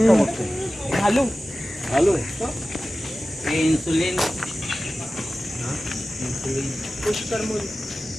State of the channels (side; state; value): both; normal; correlation 0.95